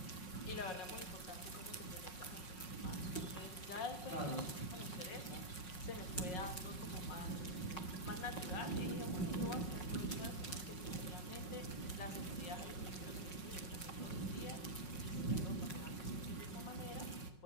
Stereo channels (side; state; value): right; late; 5.5 ms